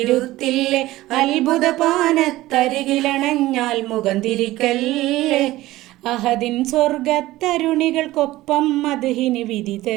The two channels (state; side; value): quieter; left; 17.0 dB